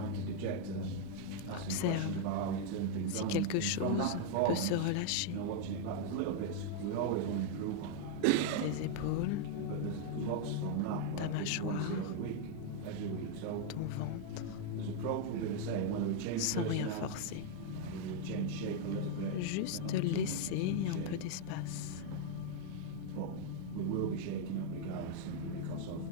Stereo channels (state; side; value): different; both; correlation 0.00